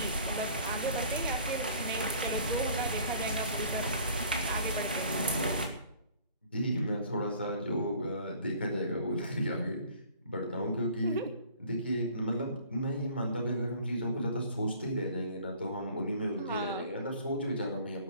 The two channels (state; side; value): inverted; both; correlation -0.52